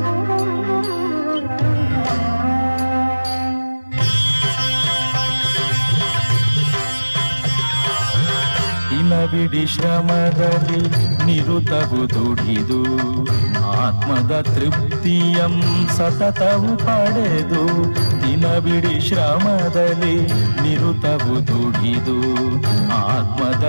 ದಿನವಿಡೀ ಶ್ರಮದಲ್ಲಿ ನಿರುತವು ದುಡಿದು ಆತ್ಮದ ತೃಪ್ತಿಯಂ ಸತತವು ಪಡೆದು. ದಿನವಿಡೀ ಶ್ರಮದಲ್ಲಿ ನಿರುತವು ದುಡಿದು ಆತ್ಮದ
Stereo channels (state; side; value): inverted; both; correlation -1.00